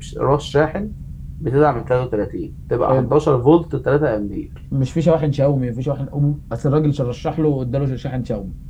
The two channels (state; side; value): identical; both; correlation 1.00